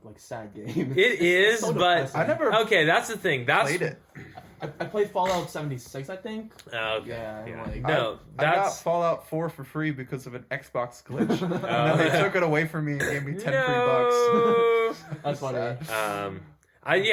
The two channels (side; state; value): both; identical; correlation 1.00